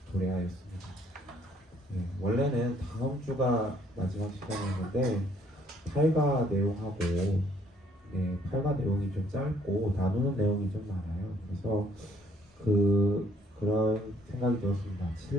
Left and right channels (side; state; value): both; normal; correlation 0.64